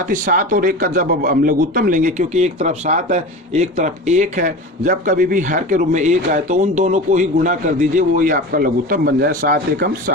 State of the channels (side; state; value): both; normal; correlation 0.31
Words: ही 7 और 1 का जब हम लघुत्तम लेंगे, क्योंकि एक तरफ 7 है एक तरफ 1 है, जब कभी भी हर के रूप में 1 आए तो उन दोनों को ही गुणा कर दीजिए, वो ही आपका लघुत्तम बन जाए। 7 एकम